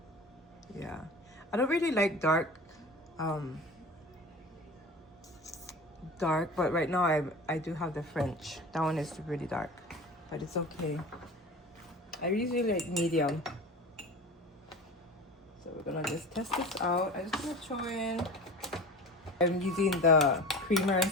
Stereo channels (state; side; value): normal; both; correlation 0.35